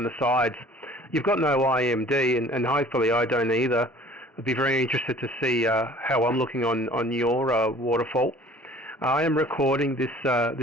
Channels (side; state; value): both; normal; correlation 0.50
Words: the sides. You've got no IMD, and hopefully I don't either. I'd be very interested to see how I'm looking on your waterfall. I am recording this